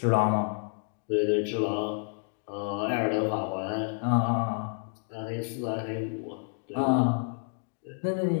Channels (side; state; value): right; silent; 56 dB below the other